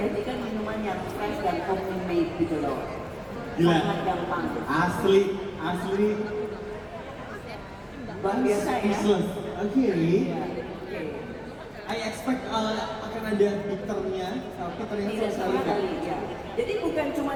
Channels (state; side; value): identical; both; correlation 1.00